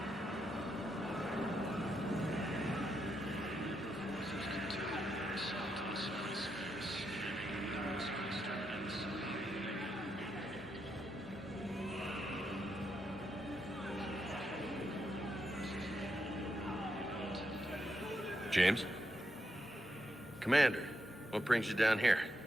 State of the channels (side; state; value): both; normal; correlation 0.82